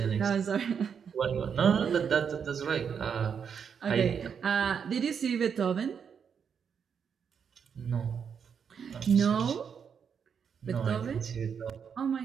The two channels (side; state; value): left; quieter; 7.0 dB